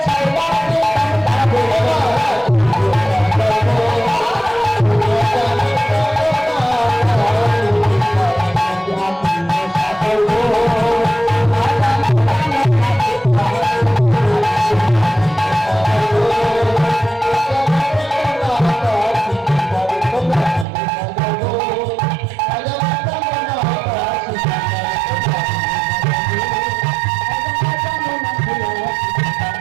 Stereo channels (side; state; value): left; drops out; at 20.7 s